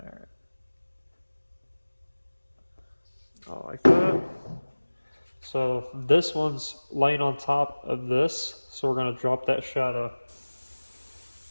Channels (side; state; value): both; inverted; correlation -1.00